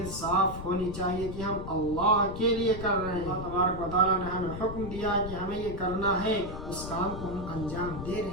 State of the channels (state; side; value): noise; left; rumble, 8 dB below the sound